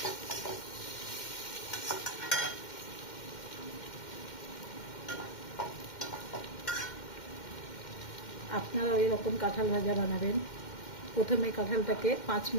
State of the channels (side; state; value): right; late; 2.1 ms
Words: আপনারা এরকম কাঁঠাল ভাজা বানাবেন। প্রথমে কাঁঠালটাকে 5